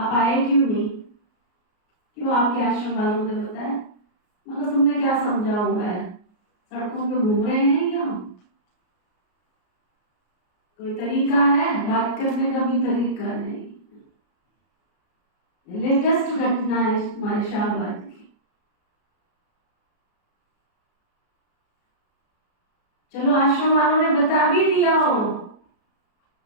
आए क्यों नहीं? क्यों आपके आश्रम वालों ने बताया? मगर तुमने क्या समझा हुआ है? सड़कों पे घूम रहे हैं क्या? कोई तरीका है? बात करने का भी तरीका नहीं। लेटेस्ट घटना है हमारे शाहबाद की। चलो आश्रम वालों ने बता भी दिया हो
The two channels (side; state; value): right; late; 33 ms